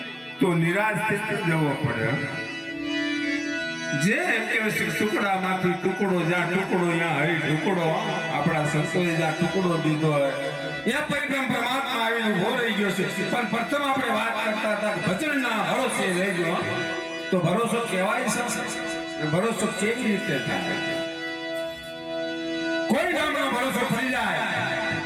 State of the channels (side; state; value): both; identical; correlation 1.00